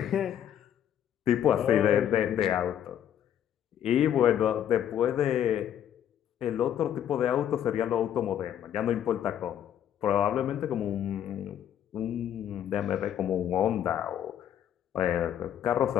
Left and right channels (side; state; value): right; quieter; 10.2 dB